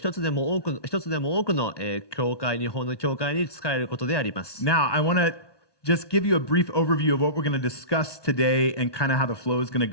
つでも多くの、教会日本の教会に仕えることであります。 Now, I want to just give you a brief overview of what we're going to discuss today and kind of how the flow is going to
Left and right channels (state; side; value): late; right; 1.2 ms